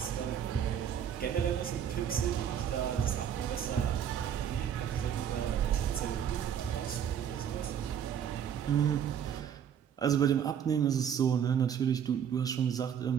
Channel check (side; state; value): left; quieter; 8.7 dB